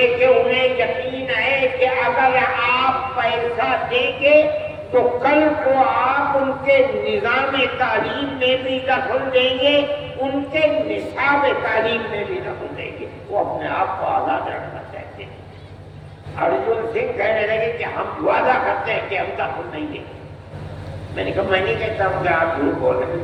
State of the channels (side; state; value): both; identical; correlation 1.00